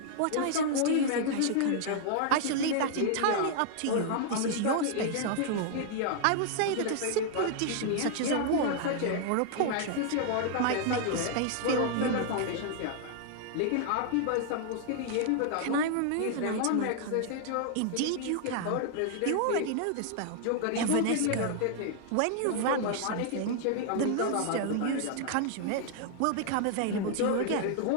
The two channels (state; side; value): different; both; correlation 0.00